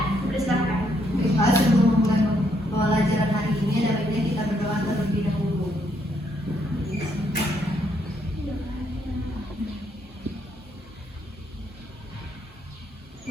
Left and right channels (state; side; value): normal; both; correlation 0.73